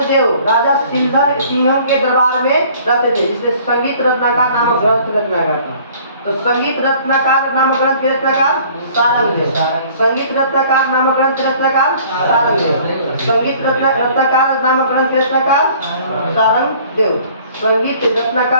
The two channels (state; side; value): inverted; both; correlation -0.53